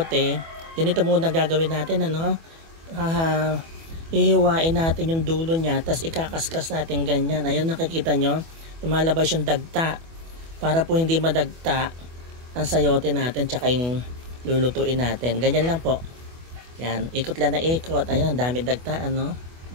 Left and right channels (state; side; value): late; left; 24 ms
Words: ganito muna gagawin natin, hihiwain natin yung dulo niya, tapos ikakaskas natin ganyan. Ayun, nakikita nyo, lumalabas yung dagta para po hindi madagta ang sayote natin tsaka yung lulutuin natin. Ganyan lang po. Yan, ikot lang na ikot. Ayun, ang dami dagta,